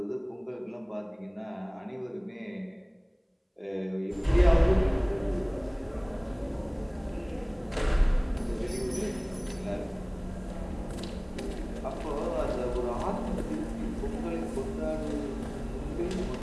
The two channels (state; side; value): identical; both; correlation 1.00